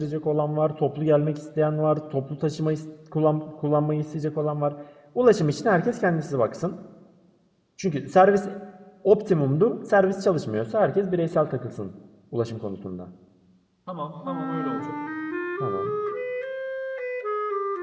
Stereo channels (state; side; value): identical; both; correlation 1.00